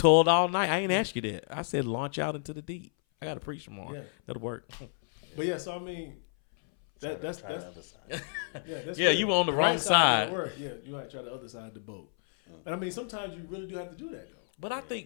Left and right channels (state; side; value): silent; right; 57 dB below the other